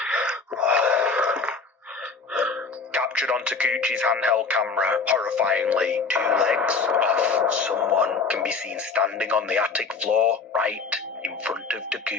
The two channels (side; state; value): right; quieter; 4.6 dB